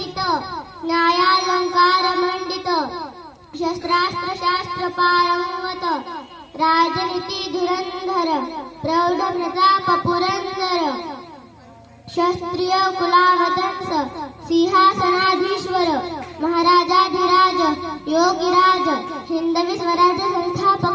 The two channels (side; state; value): both; identical; correlation 1.00